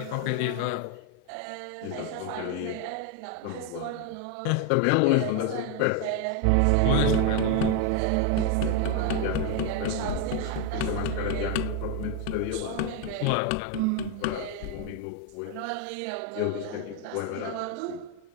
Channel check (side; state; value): both; different; correlation 0.01